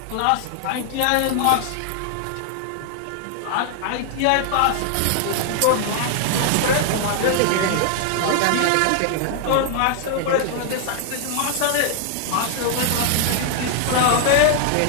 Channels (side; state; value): both; different; correlation 0.00